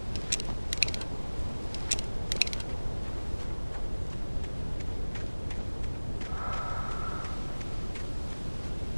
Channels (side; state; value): both; inverted; correlation -1.00